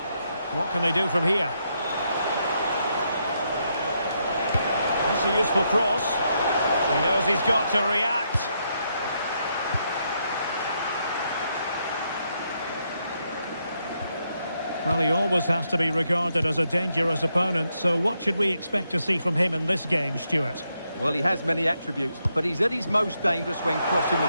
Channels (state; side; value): inverted; both; correlation -0.79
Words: What can they do from here? That's a useful cross. He knows he's got to react. Well, he always has to be regarded as a dangerous opponent, so what should we expect to see from him in this game, Stuart? Well, he has many attributes, but he's at his most dangerous when crossing the